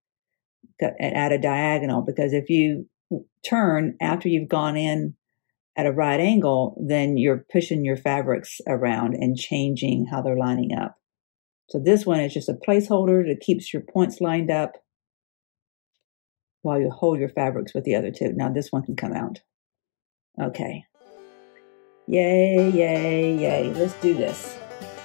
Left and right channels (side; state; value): right; silent; digital silence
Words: at a diagonal. Because if you turn after you've gone in at a right angle, then you're pushing your fabrics around and changing how they're lining up. So this one is just a placeholder that keeps your points lined up while you hold your fabrics with the other two. Now this one can come out. Okay. Yay, yay, yay. Let's do this.